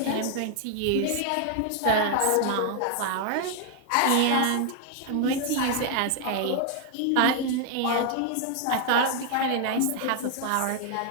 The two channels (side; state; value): both; different; correlation 0.00